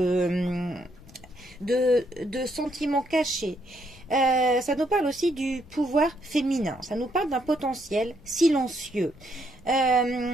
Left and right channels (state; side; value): noise; left; rumble, 23 dB below the sound